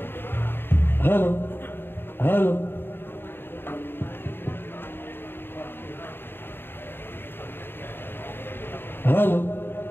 हॅलो हॅलो हॅलो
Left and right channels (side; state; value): right; late; 0.10 ms